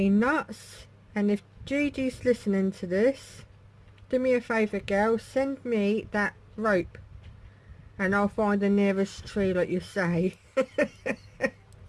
nuts. And if Gigi's listening to this, do me a favour, girl. Send me that rope. And I'll find the nearest tree like you say.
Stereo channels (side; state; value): both; identical; correlation 1.00